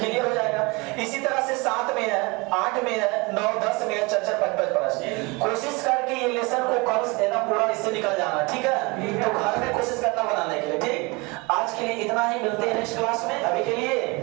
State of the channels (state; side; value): quieter; left; 26.7 dB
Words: हो जाएगा। इसी तरह से 7 में है, 8 में है, 9, 10 में है, 4, 5 प्रश्न। कोशिश करके ये लेसन को कल देना पूरा, इससे निकल जाना, ठीक है। तो घर में कोशिश करना बनाने के लिए, ठीक। आज के लिए इतना ही, मिलते हैं नेक्स्ट क्लास में। अभी के